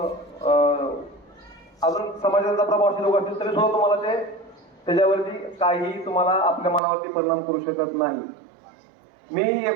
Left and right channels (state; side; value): drops out; left; at 6.8 s